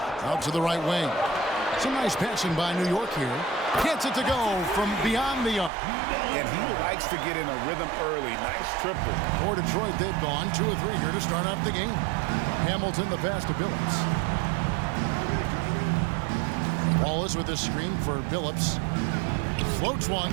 Out to the right wing. Some nice passing by New York here. Gets it to go from beyond the arc. And he likes to get in a rhythm early. Nice triple. For Detroit, they've gone 2 of 3 here to start off the game. Hamilton, the pass to Billups. Wallace with the screen for Billups. Floats one.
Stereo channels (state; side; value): drops out; left; at 5.7 s